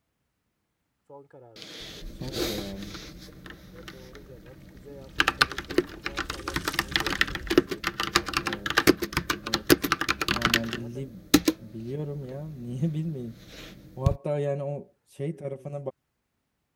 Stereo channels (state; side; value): identical; both; correlation 1.00